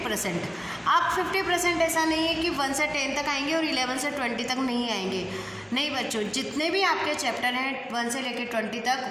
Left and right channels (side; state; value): both; identical; correlation 1.00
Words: आप 50% ऐसा नहीं है कि 1 से 10 तक आएंगे और 11 से 20 तक नहीं आएंगे। नहीं बच्चों, जितने भी आपके चैप्टर हैं 1 से लेकर 20